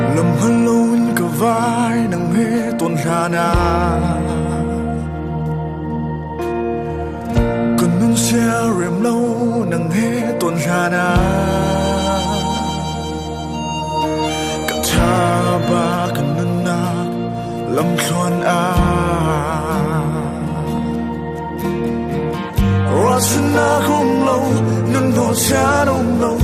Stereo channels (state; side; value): identical; both; correlation 1.00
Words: Lâm hân lâu cả vai nắng hê tuần hà na cần nâng xe rèm lâu nắng hê tuần hà na cả cha ba cần nâng nạc lâm xoan a Rasana không lâu nâng đỏ cha đông lâu